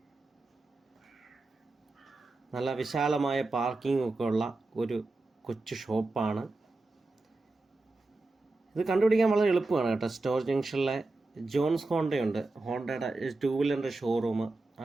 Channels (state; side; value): quieter; left; 3.2 dB